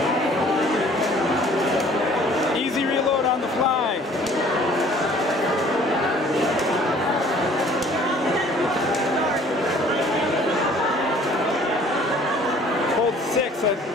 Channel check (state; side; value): normal; both; correlation 0.54